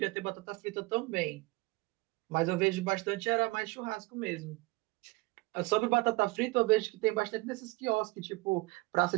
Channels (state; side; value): quieter; left; 23.4 dB